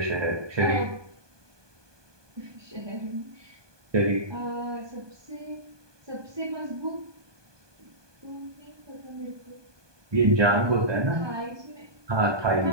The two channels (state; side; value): late; left; 1.2 ms